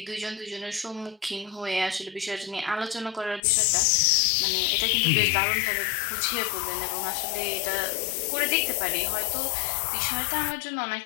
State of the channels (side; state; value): right; drops out; at 3.4 s